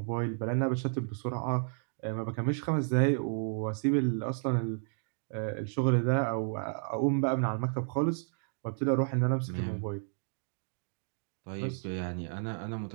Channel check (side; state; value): left; silent; digital silence